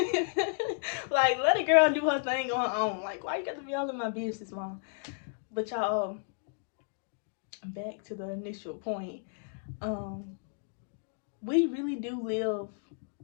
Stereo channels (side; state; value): right; silent; digital silence